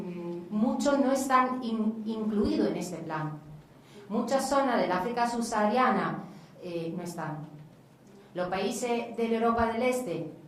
muchos no están incluidos en este plan. Muchas zonas del África subsahariana no están. Los países de la Europa del Este,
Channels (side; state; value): both; identical; correlation 1.00